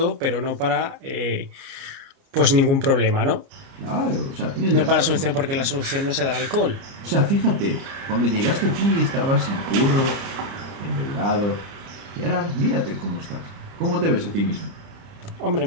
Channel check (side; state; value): left; late; 29 ms